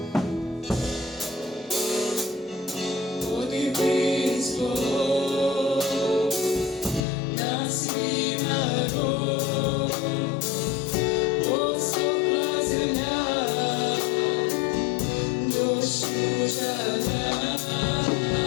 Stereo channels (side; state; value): right; drops out; at 7.1 s